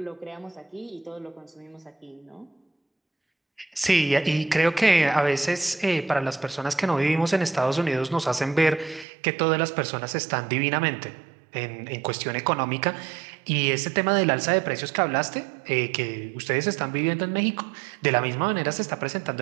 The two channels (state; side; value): drops out; left; at 9.1 s